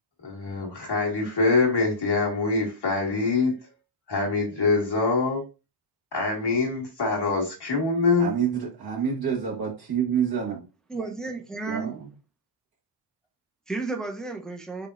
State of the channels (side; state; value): both; normal; correlation -0.13